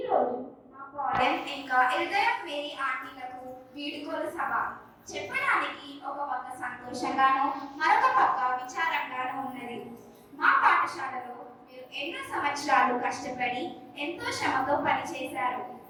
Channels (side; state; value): both; identical; correlation 1.00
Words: మా పాలిన్ ఇంకా ఇరిదియా మేరీ ఆంటీలకు వీడుకోలు సభ చెప్పడానికి ఒక పక్క సంతోషంగానూ మరొక పక్క విచారంగానూ ఉన్నది. మా పాఠశాలలో మీరు ఎన్నో సంవత్సరాలు కష్టపడి ఎంతో శ్రమతో పనిచేశారు.